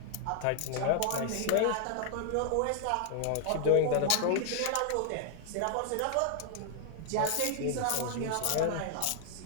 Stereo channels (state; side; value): different; both; correlation 0.00